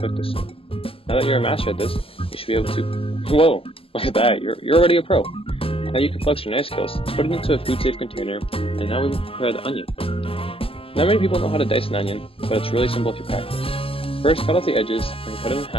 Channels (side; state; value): right; late; 0.27 ms